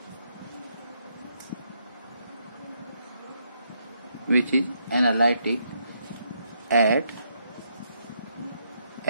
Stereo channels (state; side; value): inverted; both; correlation -0.75